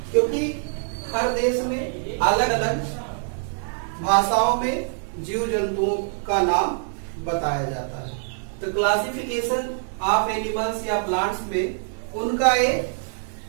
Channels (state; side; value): silent; left; digital silence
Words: क्योंकि हर देश में अलग अलग भाषाओं में जीव जंतुओं का नाम बताया जाता है। तो क्लासिफिकेशन ऑफ एनिमल्स या प्लांट्स में उनका एक